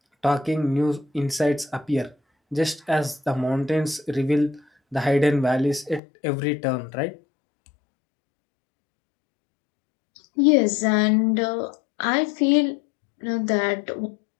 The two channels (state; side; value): drops out; right; at 6.0 s